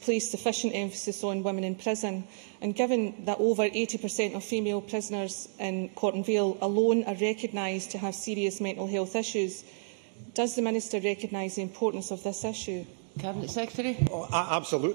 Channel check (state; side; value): silent; left; digital silence